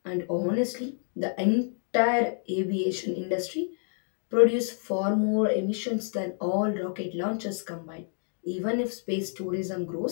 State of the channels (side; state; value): right; silent; 57 dB below the other